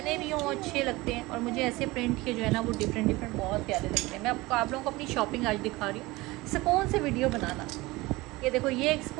भी हों अच्छे लगते हैं, और मुझे ऐसे प्रिंट के जो है ना वो डिफरेंट बहुत प्यारे लगते हैं। मैं आप लोगों को अपनी शॉपिंग आज दिखा रही हूँ, सुकून से वीडियो बनाना। ये देखो, ये एक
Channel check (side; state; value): left; quieter; 21.0 dB